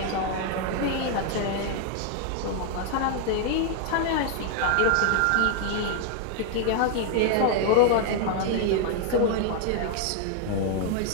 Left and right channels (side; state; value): both; different; correlation 0.00